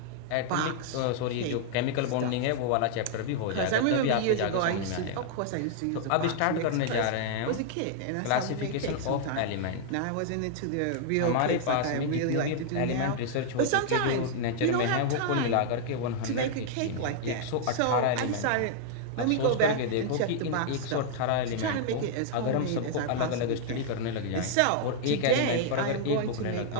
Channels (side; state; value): both; different; correlation -0.01